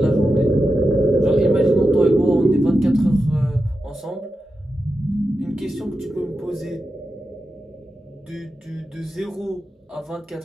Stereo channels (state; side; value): normal; both; correlation 0.90